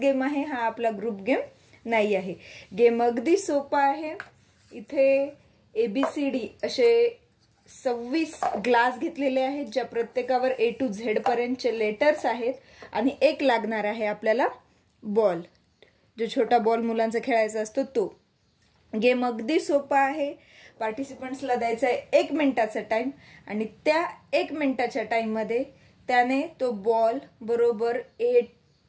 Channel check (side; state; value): both; identical; correlation 1.00